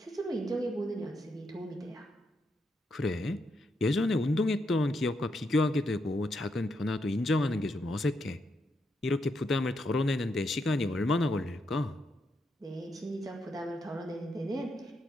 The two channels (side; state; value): both; normal; correlation 0.81